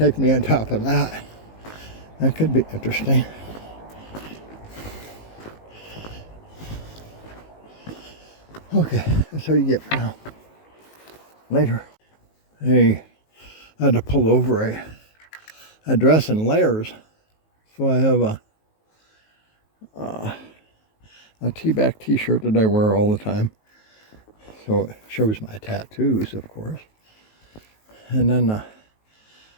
me on top of that. That could be interesting. Okay, that's all you get for now. Later. Hey, I had to pull over a dress in layers. So I have a T-back t-shirt that I wear all the time. So it shows my tattoos, of course. And then a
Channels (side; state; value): right; late; 19 ms